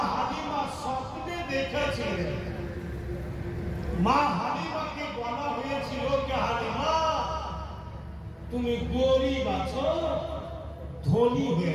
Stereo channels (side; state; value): both; identical; correlation 1.00